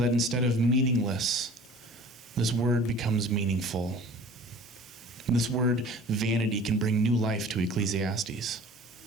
instead of meaningless, this word becomes meaningful. This word vanity can bring new life to Ecclesiastes.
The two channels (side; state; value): both; normal; correlation 0.45